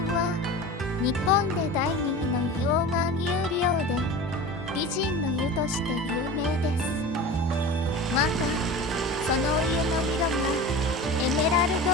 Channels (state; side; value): normal; both; correlation 0.33